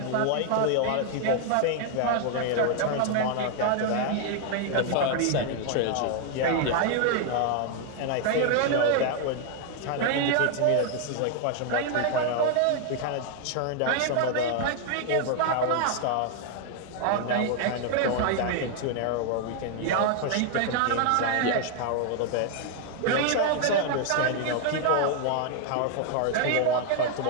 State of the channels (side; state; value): both; different; correlation 0.00